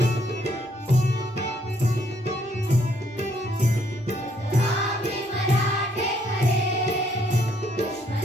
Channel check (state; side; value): normal; both; correlation 0.69